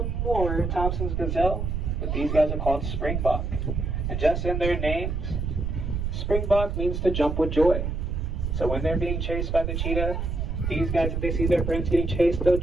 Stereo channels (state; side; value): noise; right; rumble, 1 dB below the sound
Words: more Thompson's gazelle, but these guys are called Springbok. And just in their names, Springbok means to jump with joy. So when they're being chased by the cheetah, these guys, if they see their friends getting chased, they'll